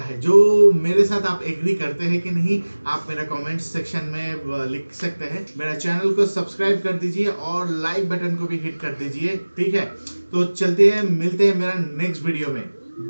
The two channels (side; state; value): both; inverted; correlation -1.00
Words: जो मेरे साथ आप एग्री करते हैं कि नहीं, आप मेरा कमेंट सेक्शन में लिख सकते हैं। मेरा चैनल को सब्सक्राइब कर दीजिए और लाइक बटन को भी हिट कर दीजिए, ठीक है। तो चलते हैं, मिलते हैं मेरा नेक्स्ट वीडियो में,